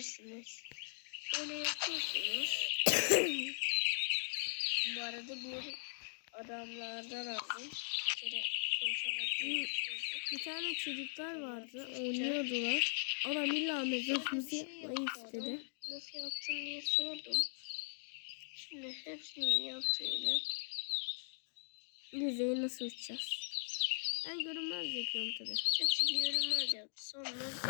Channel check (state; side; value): silent; right; digital silence